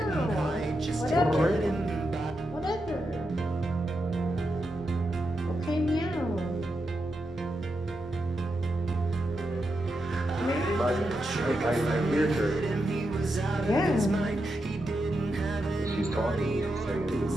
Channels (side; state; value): both; normal; correlation 0.86